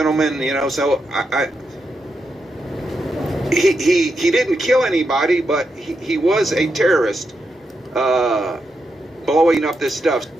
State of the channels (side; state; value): both; normal; correlation 0.84